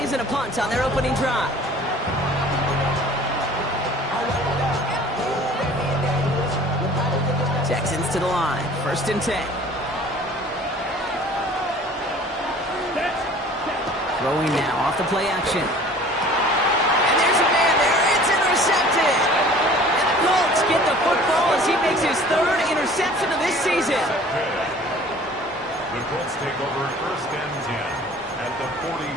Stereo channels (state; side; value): normal; both; correlation 0.48